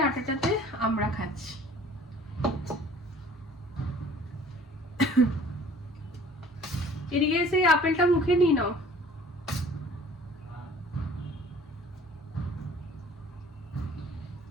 আটাটাতে আমরা খাচ্ছি। এদিকে সেই আপেলটা মুখে নিয়ে নাও।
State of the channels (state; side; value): normal; both; correlation 0.50